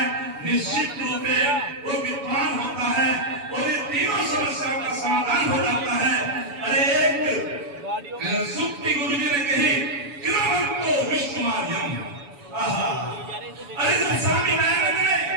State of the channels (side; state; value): left; late; 7.0 ms